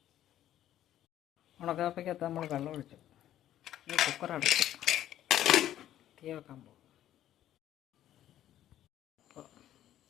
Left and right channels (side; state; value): right; quieter; 12.2 dB